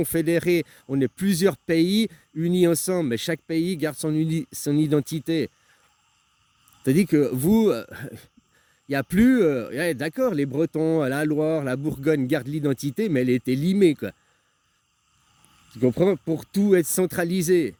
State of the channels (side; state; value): both; identical; correlation 1.00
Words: On est plusieurs pays unis ensemble, mais chaque pays garde son identité. C'est-à-dire que vous, il n'y a plus... d'accord, les Bretons, la Loire, la Bourgogne gardent l'identité, mais elle était limée, quoi. Tu comprends? Pour tout être centralisé.